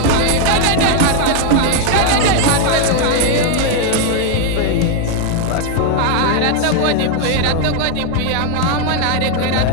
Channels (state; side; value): different; both; correlation 0.01